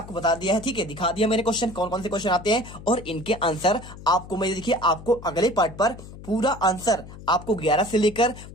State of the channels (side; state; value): left; noise; hum, 15 dB below the sound